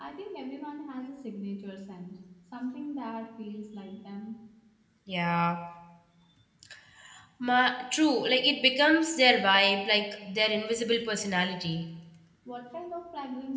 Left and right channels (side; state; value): both; identical; correlation 1.00